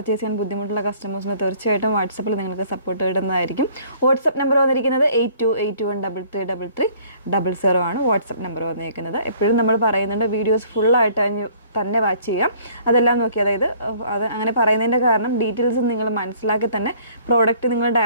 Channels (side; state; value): both; inverted; correlation -0.57